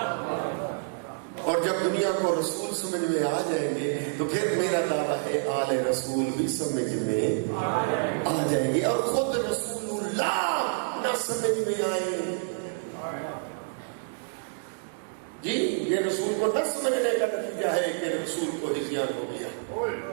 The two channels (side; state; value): left; silent; digital silence